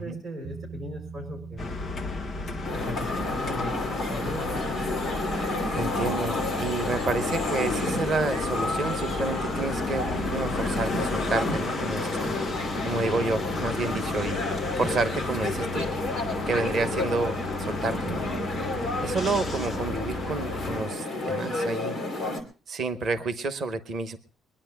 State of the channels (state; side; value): normal; both; correlation 0.66